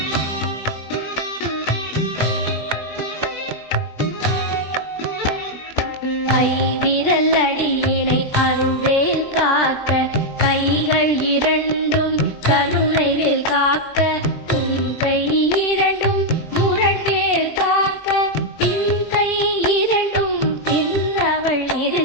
கைவிரல் அடியினை அருள்வேல் காக்க கைகள் இரண்டும் கருணைவேல் காக்க கை இரண்டும் முரண்வேல் காக்க கை இரண்டும் பின்னவள்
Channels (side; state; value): right; late; 20 ms